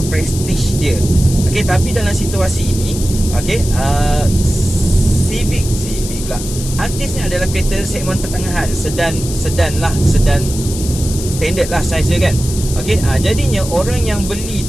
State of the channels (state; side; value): noise; left; hiss, 10 dB below the sound